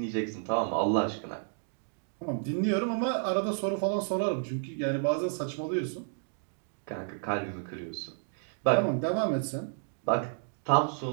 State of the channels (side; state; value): left; silent; digital silence